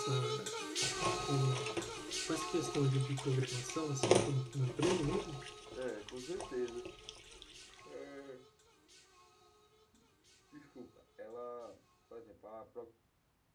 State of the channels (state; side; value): identical; both; correlation 1.00